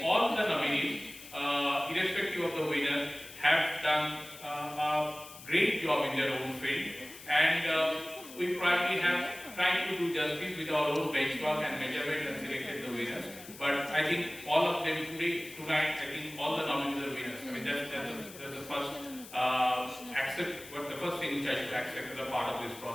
all the nominees, irrespective of the winner, have done a great job in their own field. And we probably have tried to do justice with our own benchmark and measurement and selected the winners. But I think all of them tonight, I think all the nominees are winners. I mean, that's the first the first thing which I should accept as a part of this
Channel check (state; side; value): noise; left; hiss, 16 dB below the sound